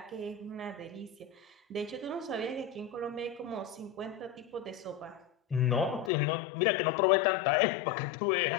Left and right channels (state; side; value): drops out; right; at 6.1 s